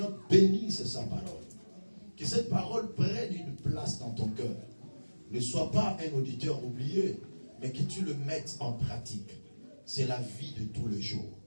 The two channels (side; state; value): both; inverted; correlation -1.00